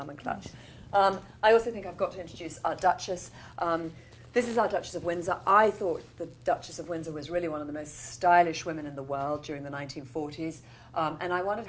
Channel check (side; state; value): both; identical; correlation 1.00